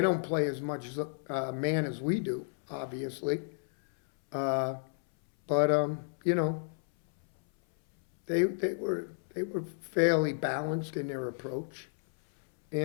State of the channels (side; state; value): right; silent; 57 dB below the other